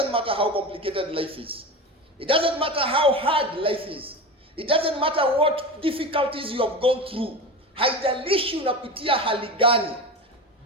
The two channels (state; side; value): normal; both; correlation 0.26